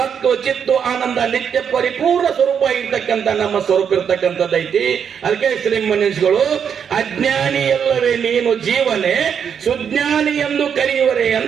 ಚಿತ್ತು ಆನಂದ ನಿತ್ಯ ಪರಿಪೂರ್ಣ ಸ್ವರೂಪ ಆಗಿರ್ತಕ್ಕಂಥ ನಮ್ಮ ಸ್ವರೂಪ ಇರ್ತಕ್ಕಂಥದ್ದೈತಿ. ಅದಕ್ಕೆ ಶ್ರೀಮನೀಷಿಗಳು ಅಜ್ಞಾನಿ ಎಲ್ಲವೇ ನೀನು ಜೀವನೇ ಸುಜ್ಞಾನಿ ಎಂದು ಕರೆಯುವರೇ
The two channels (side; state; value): left; quieter; 7.6 dB